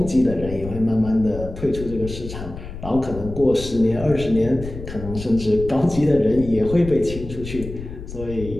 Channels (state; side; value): noise; left; rumble, 10 dB below the sound